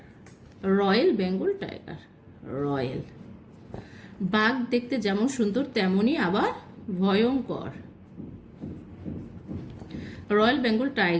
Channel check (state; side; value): identical; both; correlation 1.00